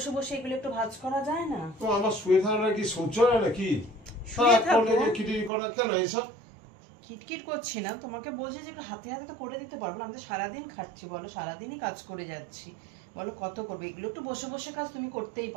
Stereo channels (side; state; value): left; drops out; at 5.5 s